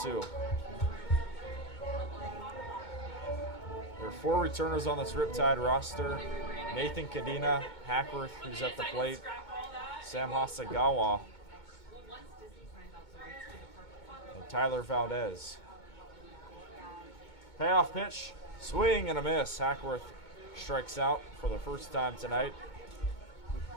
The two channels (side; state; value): right; late; 2.2 ms